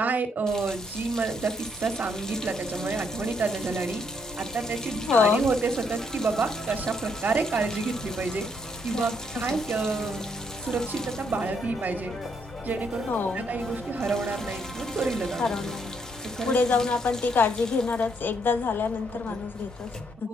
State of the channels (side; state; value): both; normal; correlation 0.73